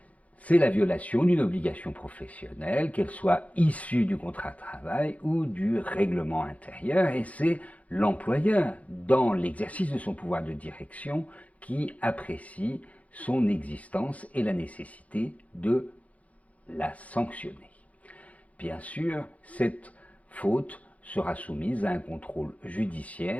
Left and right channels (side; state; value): right; late; 0.068 ms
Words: C'est la violation d'une obligation professionnelle, qu'elle soit issue du contrat de travail ou du règlement intérieur, et c'est l'employeur, dans l'exercice de son pouvoir de direction, qui apprécie son existence et la nécessité de la sanctionner. Bien sûr, cette faute sera soumise à un contrôle